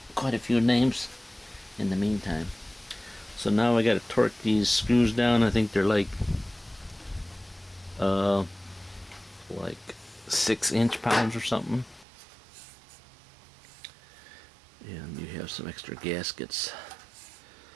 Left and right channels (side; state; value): left; drops out; at 12.1 s